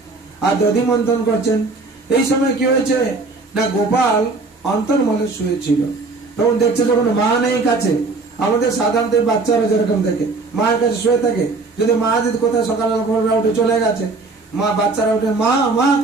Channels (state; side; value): quieter; left; 3.7 dB